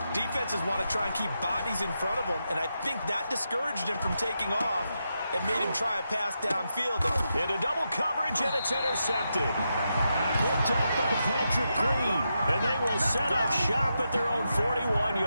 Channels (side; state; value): both; inverted; correlation -0.85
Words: defenses want to try and keep bodies in front of them. And I think that discouraged him from taking off. It made him try a pass downfield. Into double coverage, and it's intercepted. Picked up by Patrick Queen. And they will set up shop at their own